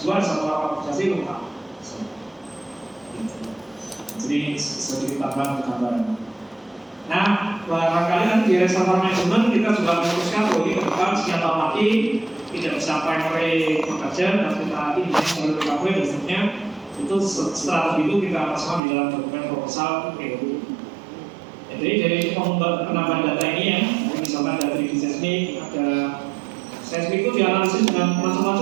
reservoir karakterisasi lengkap. Jadi sedikit tambahan gambaran. Nah, barangkali nanti di reservoir management kita juga memutuskan bahwa ini ke depan sekian tahun lagi tidak bisa primary bekerja dan kita lagi di seluruh recovery dan seterusnya. Itu strategi itu kita masukkan di dalam dokumen proposal POD. Jadi dari penambahan data ini ya, misalkan dari seismik, ada seismik itu dianalisis dengan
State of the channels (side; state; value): left; drops out; at 18.8 s